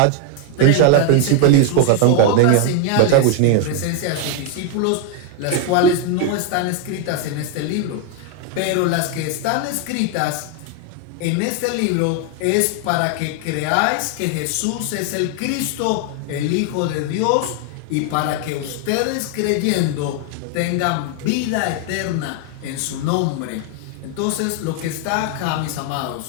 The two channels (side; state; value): both; different; correlation 0.00